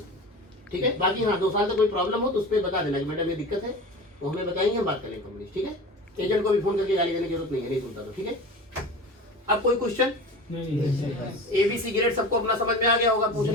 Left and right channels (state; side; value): normal; both; correlation 0.33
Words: ठीक है, बाकी हाँ 2 साल तक कोई प्रॉब्लम हो तो उस पर बता देना कि मैडम ये दिक्कत है, वो हमें बताएंगे, हम बात करेंगे कंपनी। ठीक है, एजेंट को भी फोन करके गाली देने की जरूरत नहीं है, नहीं सुनता तो। ठीक है, अब कोई क्वेश्चन? नहीं, नहीं, सही बात। ABC ग्रेड सबको अपना समझ में आ गया होगा